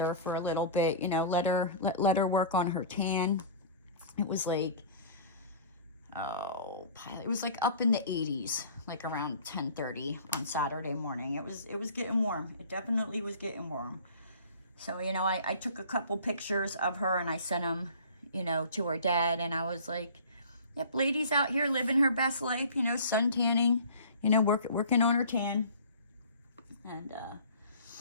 for a little bit, let her work on her tan. It was like, it was like up in the 80s, like around 10:30 on Saturday morning. It was getting warm. It definitely was getting warm. So, I took a couple pictures of her and I sent them, to her dad, and I was like, yep, Lady's out here living her best life, sun tanning, working on her tan. And,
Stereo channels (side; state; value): both; inverted; correlation -0.43